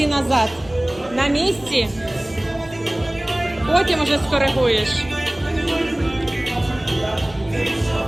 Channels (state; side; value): noise; left; rumble, 22 dB below the sound